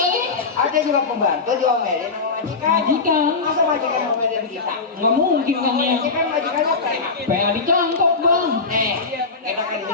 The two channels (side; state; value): right; quieter; 4.4 dB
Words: Ada juga pembantu diomelin sama majikan. Majikan. Masa majikan ngomelin kita? Nggak mungkin kan ya. Majikan majikannya PA. PA dicangkok bang. Nih, kita kan di